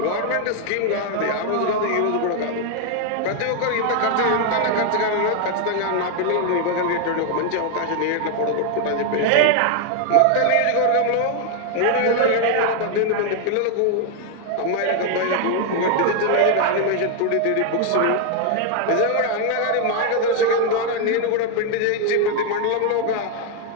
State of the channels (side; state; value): both; different; correlation 0.00